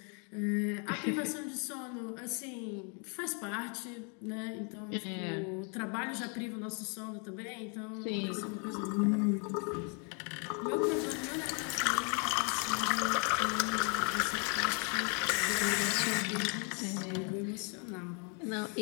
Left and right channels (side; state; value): right; quieter; 37.5 dB